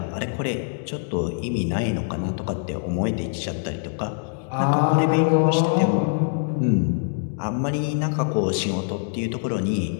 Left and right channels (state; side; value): silent; right; 63 dB below the other